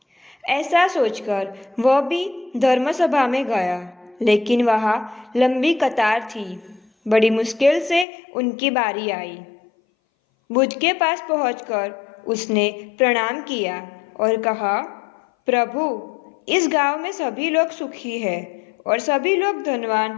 ऐसा सोचकर वह भी धर्म सभा में गया, लेकिन वहाँ लंबी कतार थी। बड़ी मुश्किल से उनकी बारी आई। बुद्ध के पास पहुंचकर उसने प्रणाम किया और कहा, प्रभु, इस गांव में सभी लोग सुखी हैं और सभी लोग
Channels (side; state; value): right; drops out; at 8.1 s